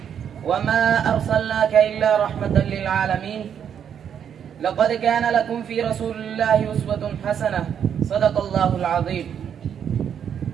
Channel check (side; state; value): left; quieter; 8.4 dB